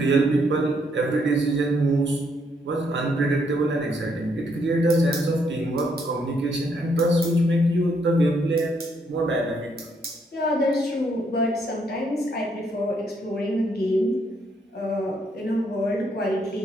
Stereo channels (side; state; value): both; normal; correlation 0.73